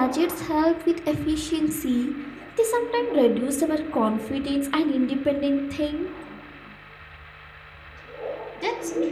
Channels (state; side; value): identical; both; correlation 1.00